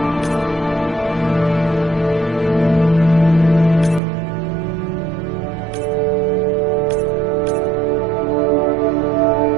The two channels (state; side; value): drops out; left; at 4.0 s